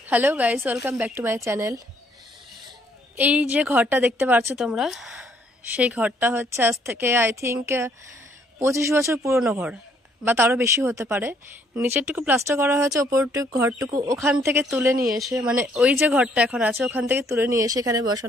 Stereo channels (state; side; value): normal; both; correlation 0.66